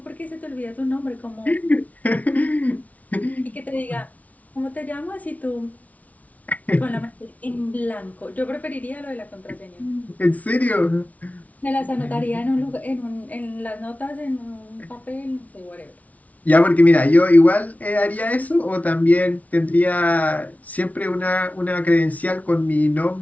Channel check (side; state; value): right; late; 0.070 ms